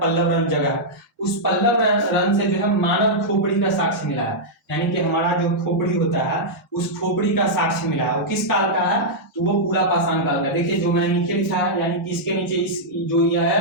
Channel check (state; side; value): normal; both; correlation -0.08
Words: जगह। उस पल्लवरन से जो है मानव खोपड़ी का साक्ष्य मिला है, यानी कि हमारा जो खोपड़ी होता है उस खोपड़ी का साक्ष्य मिला है। वो किस काल का है? तो वो पूरा पाषाण काल का। देखिए जो मैंने नीचे लिखा है, यानी कि इसके नीचे इस जो यह